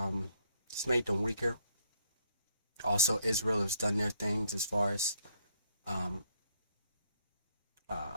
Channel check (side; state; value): both; inverted; correlation -0.69